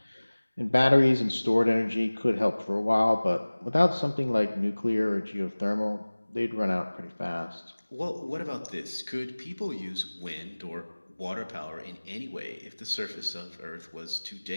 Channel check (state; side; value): inverted; both; correlation -1.00